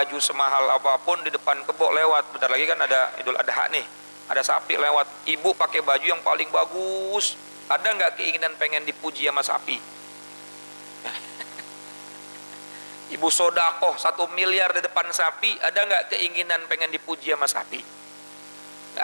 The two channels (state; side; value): inverted; both; correlation -1.00